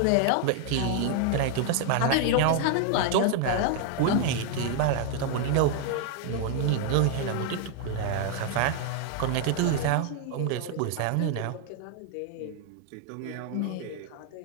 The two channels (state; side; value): different; both; correlation 0.00